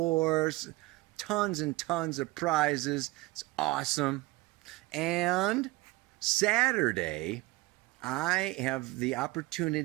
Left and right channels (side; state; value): left; quieter; 21.4 dB